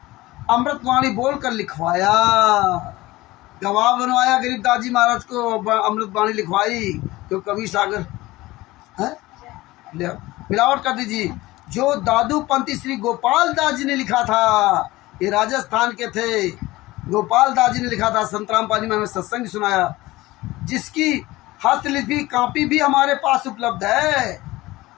अमृतवाणी बोलकर लिखवाया। गवाह बनवाया गरीबदास जी महाराज को, अमृतवाणी लिखवाई। तो कबीर सागर है, मिलावट कर दीजिए। जो दादू पंथी श्री गोपाल दास जी ने लिखा था, ये राजस्थान के थे, गोपाल दास जी ने लिखा था। संतराम पाजी में हमें सत्संग सुनाया, जिसकी हस्तलिपि कॉपी भी हमारे पास उपलब्ध है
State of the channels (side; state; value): right; quieter; 18.9 dB